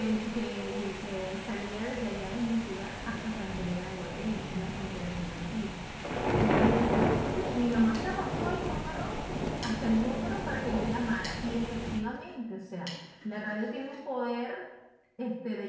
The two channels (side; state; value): both; identical; correlation 1.00